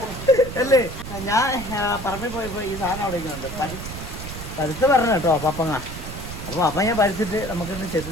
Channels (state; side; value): noise; right; rumble, 9 dB below the sound